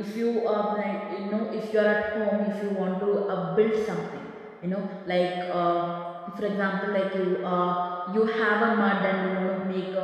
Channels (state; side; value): identical; both; correlation 1.00